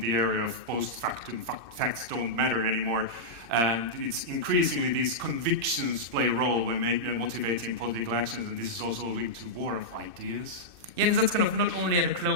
area of post-factum, facts don't matter anymore. And it's increasingly these convictions play a role when motivating political actions, and this is also linked to war of ideas. Yeah, and that's kind of not only at a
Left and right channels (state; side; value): late; left; 2.6 ms